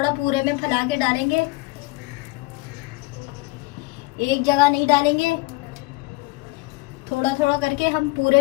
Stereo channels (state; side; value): quieter; right; 22.5 dB